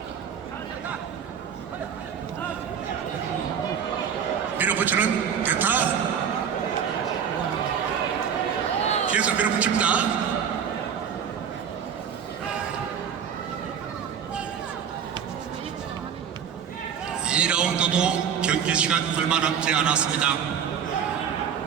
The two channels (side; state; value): left; quieter; 7.8 dB